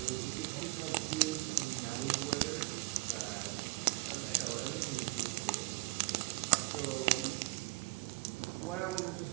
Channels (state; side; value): quieter; left; 24.4 dB